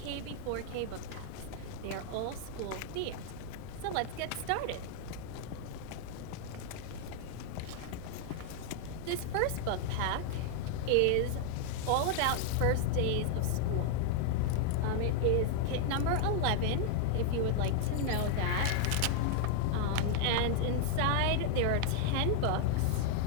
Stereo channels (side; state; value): both; different; correlation 0.00